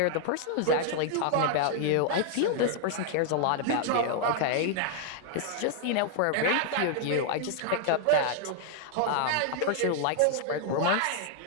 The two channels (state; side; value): different; both; correlation 0.00